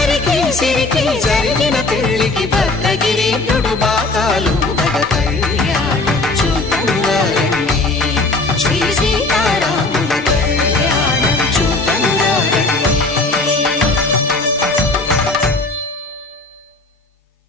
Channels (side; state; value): right; quieter; 3.2 dB